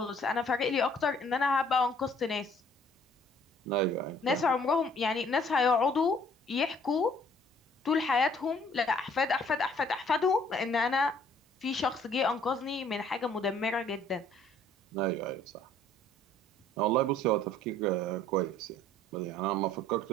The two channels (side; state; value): both; normal; correlation 0.58